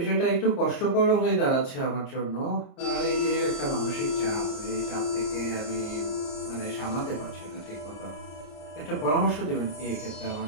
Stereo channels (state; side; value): late; right; 30 ms